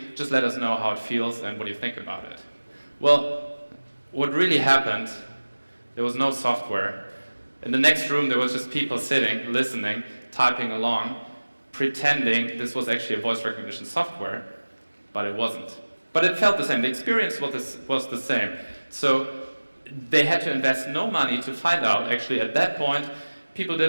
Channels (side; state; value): both; inverted; correlation -1.00